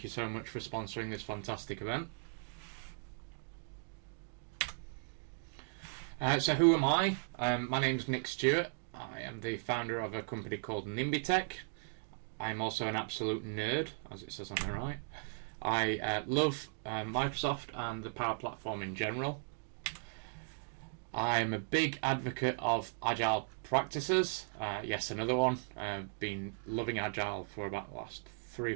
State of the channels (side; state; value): left; silent; digital silence